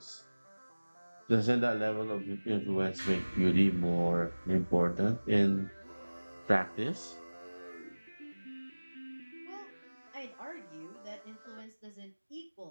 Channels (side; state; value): both; inverted; correlation -1.00